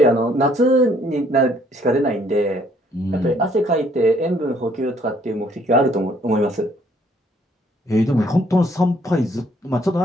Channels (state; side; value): normal; both; correlation 0.64